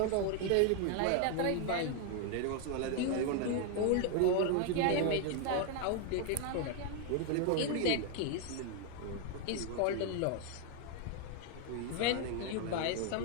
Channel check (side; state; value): both; different; correlation 0.00